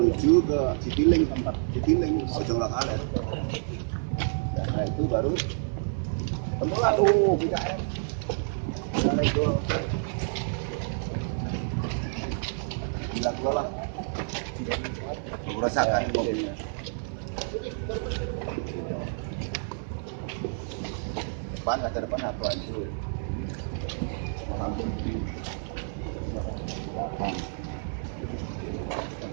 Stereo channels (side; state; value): left; silent; digital silence